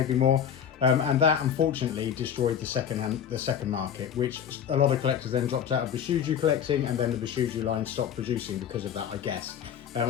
more. And that unfortunately destroyed the second market, which a lot of collectors then dropped out of Bishoujo collecting, and then the Bishoujo line stopped producing because of that, I guess. I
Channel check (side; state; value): right; quieter; 8.7 dB